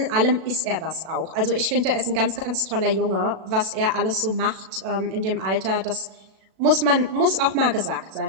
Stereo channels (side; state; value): left; late; 36 ms